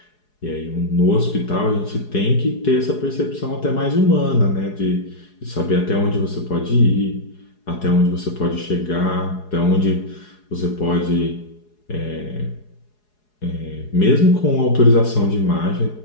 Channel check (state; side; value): late; right; 4.8 ms